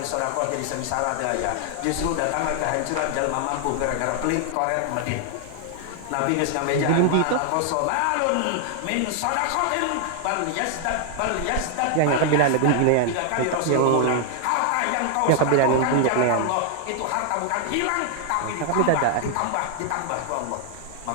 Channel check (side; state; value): both; different; correlation 0.00